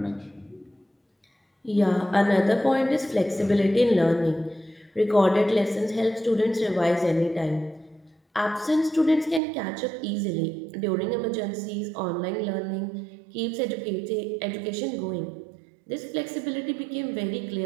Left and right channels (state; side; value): drops out; left; at 9.4 s